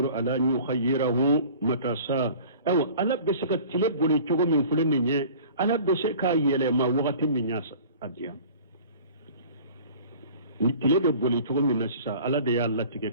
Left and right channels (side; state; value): both; inverted; correlation -0.45